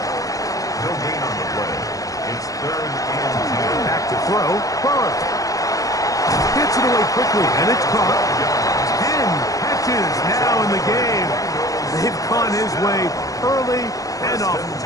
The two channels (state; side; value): late; right; 0.17 ms